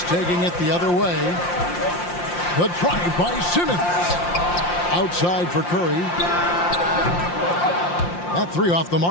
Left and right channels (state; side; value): late; right; 5.7 ms